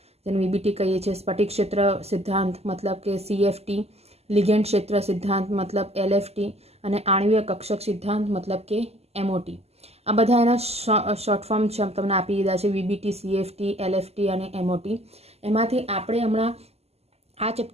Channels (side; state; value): left; late; 0.30 ms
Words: जेने वीबीटी कहीए छे, स्फटिक क्षेत्र सिद्धांत मतलब के सीएफटी, लिगेंड क्षेत्र सिद्धांत मतलब एलएफटी અને आणवीय कक्षक सिद्धांत मतलब के एमओटी। आ बधा एना शॉर्ट फॉर्म तमने आपी दीधा छे, वीबीटी, सीएफटी, एलएफटी અને एमओटी। एमांथी आपणे हमणां आ